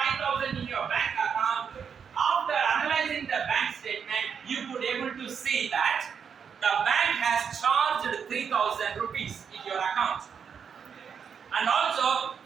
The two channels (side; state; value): left; quieter; 6.9 dB